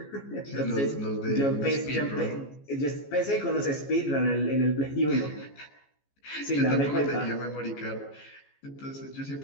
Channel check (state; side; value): late; right; 14 ms